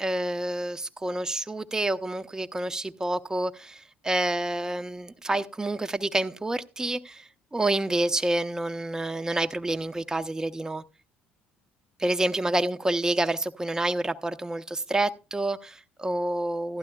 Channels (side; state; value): both; normal; correlation 0.88